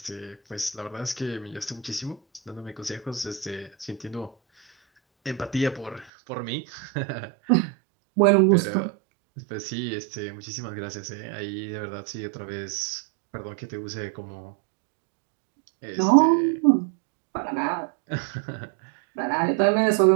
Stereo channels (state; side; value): drops out; left; at 6.1 s